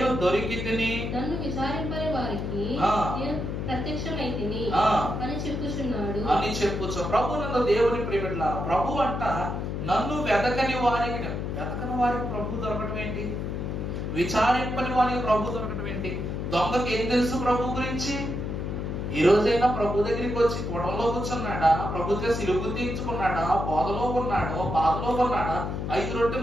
దొరికితిని, నన్ను విచారింపని వారికి నేను ప్రత్యక్షమైతిని అని చెప్పుచున్నాడు అని చెప్పుచు. ప్రభు నన్ను దేవుని ప్రియబిడ్డలారా, ప్రభు అంట నన్ను వెతకని వారికి ప్రభు దొరకటం ఏంటి? విచారింపని వారికి ప్రభు దొరకటం ఏంటి? దొంగకి ఏం తెలుసు ప్రభు గురించి? ఈ రోజైనా ప్రభు దగ్గరికి వచ్చి కొడంలో కూర్చున్నాడా? ప్రభుత్వ సిలుగు తీర్చుకున్నాడా? బోధలో ఉన్నాడా? బాధలో ఉన్నాడా? 5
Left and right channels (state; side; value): noise; left; hum, 3 dB below the sound